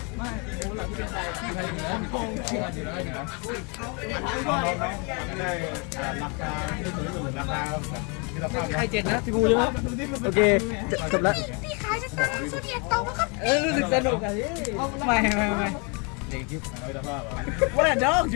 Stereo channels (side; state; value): right; quieter; 33.1 dB